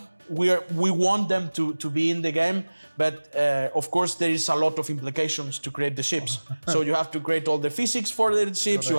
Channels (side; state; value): both; inverted; correlation -1.00